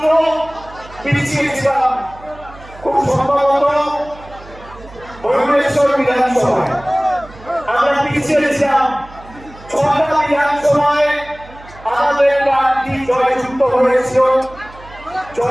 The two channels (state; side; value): noise; right; hum, 20 dB below the sound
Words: পিছিয়েছিলাম, খুব সম্ভবত ভুবনেশ্বর বিধানসভায় আমরা পিছিয়েছিলাম। 6টা বিধানসভায় আমাদের প্রার্থী জয়যুক্ত হয়েছিল,